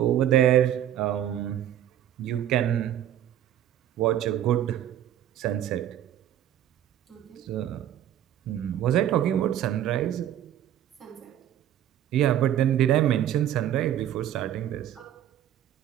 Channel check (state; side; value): quieter; left; 11.4 dB